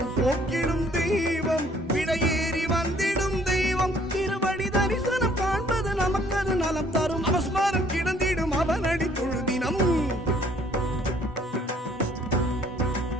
போக்கிடும் தெய்வம் விடையேறி வந்திடும் தெய்வம் திருவடி தரிசனம் காண்பது நமக்கது நலம் தரும் அவஸ்மாரம் கிடந்திடும் அவனடி தொழுதினம்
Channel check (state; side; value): normal; both; correlation 0.61